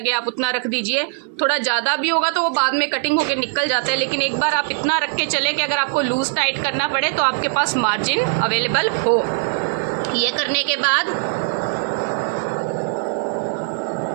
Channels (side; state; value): left; silent; 59 dB below the other